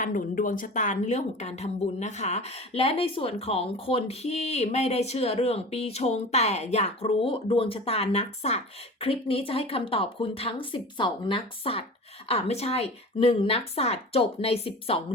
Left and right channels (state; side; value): normal; both; correlation 0.35